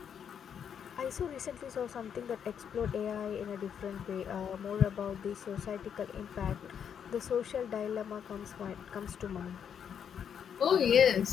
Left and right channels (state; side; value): quieter; right; 8.0 dB